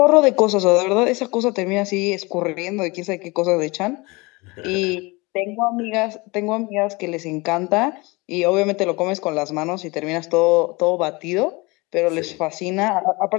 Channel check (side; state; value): right; quieter; 25.0 dB